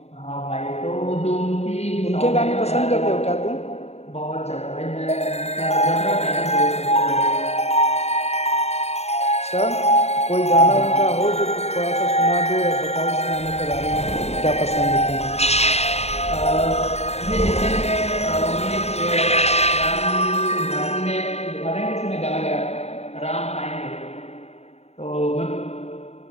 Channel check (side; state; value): right; late; 0.31 ms